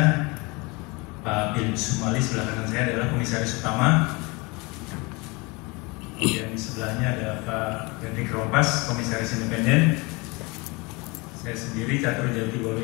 Pak Bin Sumali sebelah kanan saya adalah komisaris utama. Kemudian di sebelahnya ada Pak Hendrik Rompas, komisaris independen. Saya sendiri Catur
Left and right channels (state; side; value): quieter; right; 26.5 dB